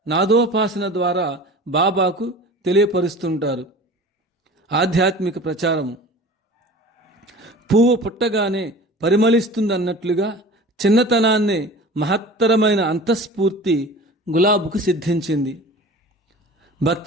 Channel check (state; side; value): normal; both; correlation 0.40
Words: నాదోపాసన ద్వారా బాబాకు తెలియపరుస్తుంటారు. ఆధ్యాత్మిక ప్రచారము పువ్వు పుట్టగానే పరిమళిస్తుందన్నట్లుగా చిన్నతనాన్నే మహత్తరమైన అంతఃస్ఫూర్తి గులాబుకు సిద్ధించింది. భక్త